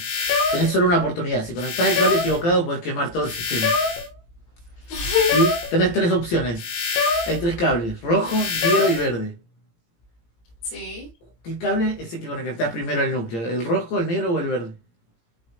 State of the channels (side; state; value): right; late; 17 ms